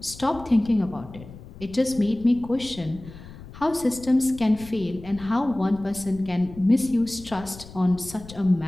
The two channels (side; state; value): left; noise; rumble, 17 dB below the sound